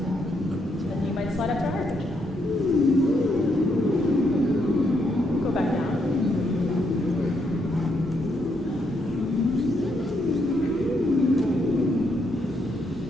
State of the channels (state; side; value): normal; both; correlation 0.77